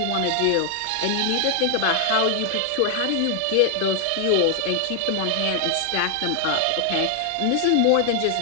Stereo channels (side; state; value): both; different; correlation 0.00